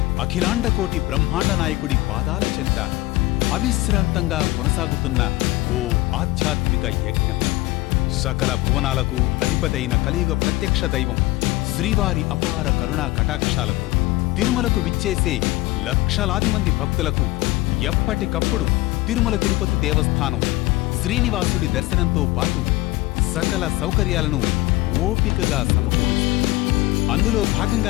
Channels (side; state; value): right; quieter; 19.7 dB